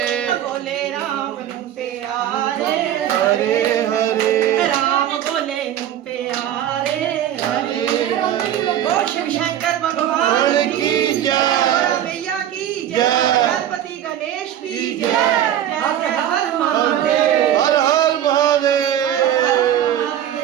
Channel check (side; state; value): left; quieter; 11.0 dB